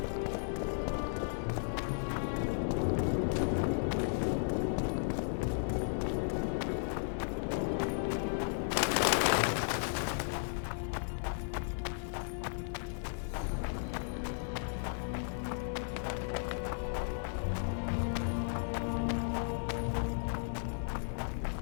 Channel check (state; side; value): silent; right; 54 dB below the other